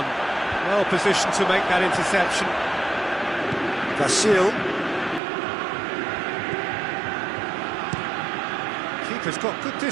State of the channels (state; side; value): drops out; left; at 5.2 s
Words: Well positioned to make that interception. Vasil. Keeper's got good